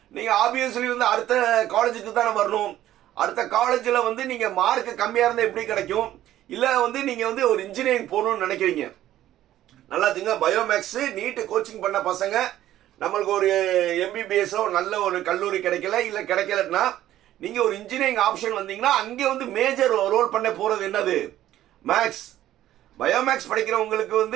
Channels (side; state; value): left; quieter; 13.2 dB